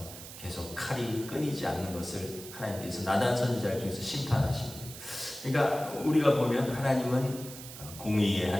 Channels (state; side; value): noise; right; hiss, 13 dB below the sound